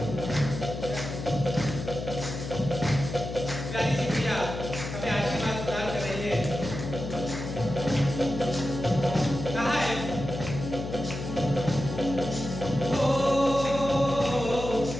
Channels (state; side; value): noise; left; hum, 7 dB below the sound